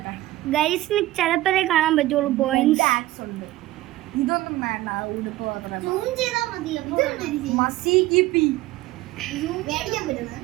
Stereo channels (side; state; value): left; quieter; 16.6 dB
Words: ഗൈസിന് ചിലപ്പോഴേ കാണാൻ പറ്റുള്ളൂ പോയിന്റ്സ്. ആക്സ് ഉണ്ട്. ഇതൊന്നും വേണ്ട, ഉടുപ്പ് മാത്രം. സൂം ചെയ്താൽ മതി. മസി കിപ്പി മേടിക്കാൻ പറ്റുന്നത്